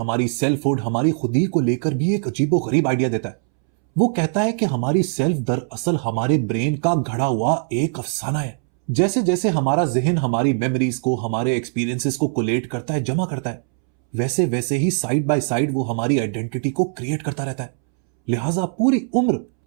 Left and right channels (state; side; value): silent; left; 65 dB below the other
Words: सेल्फहुड, हमारी खुदी को लेकर भी एक अजीबोगरीब आइडिया देता है। वो कहता है कि हमारी सेल्फ दरअसल हमारे ब्रेन का घड़ा हुआ एक अफसाना है। जैसे जैसे हमारा जहन हमारी मेमोरीज को, हमारे एक्सपीरियंसेस को कोलेट करता है, जमा करता है, वैसे वैसे ही साइड बाय साइड वो हमारी आइडेंटिटी को क्रिएट करता रहता है। लिहाजा पूरी उम्र